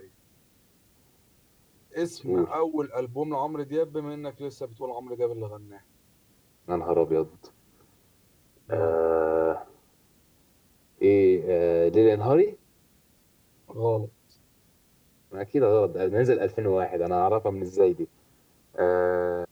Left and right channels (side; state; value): both; identical; correlation 1.00